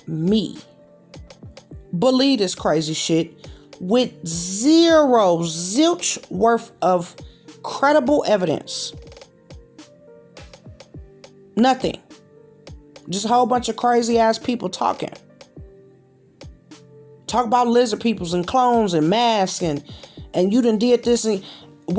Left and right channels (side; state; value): both; identical; correlation 1.00